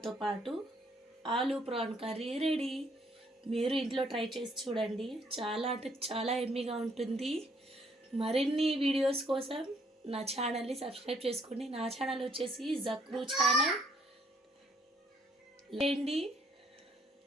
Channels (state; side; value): normal; both; correlation 0.67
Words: పాటు ఆలూ ప్రాన్ కర్రీ రెడీ. మీరు ఇంట్లో ట్రై చేసి చూడండి, చాలా అంటే చాలా ఎమ్మీగా ఉంటుంది. మరిన్ని వీడియోస్ కోసం నా ఛానల్ని సబ్స్క్రైబ్ చేసుకోండి. నా ఛానల్ వచ్చేసి జక్రూ ఛానల్. లేండి,